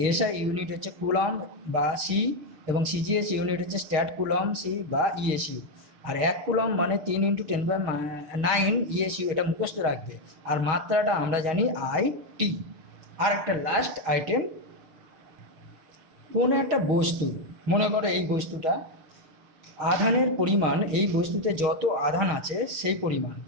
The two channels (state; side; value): late; left; 6.3 ms